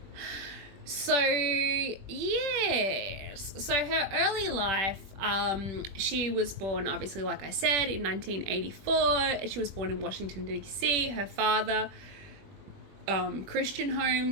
So, yes. So her early life, she was born, obviously, like I said, in 1984. She was born in Washington, D.C. Her father, Christian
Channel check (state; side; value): late; left; 21 ms